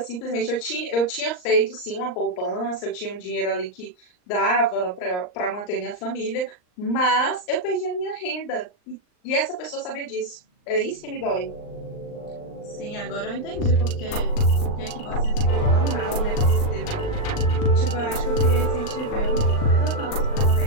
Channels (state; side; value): late; right; 39 ms